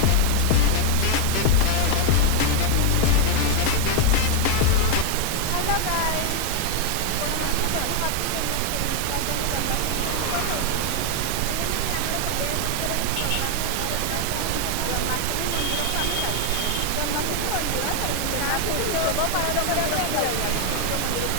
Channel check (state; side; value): different; both; correlation 0.00